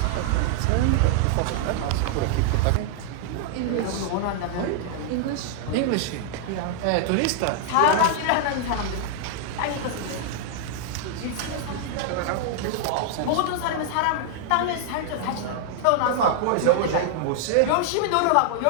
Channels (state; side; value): different; both; correlation -0.01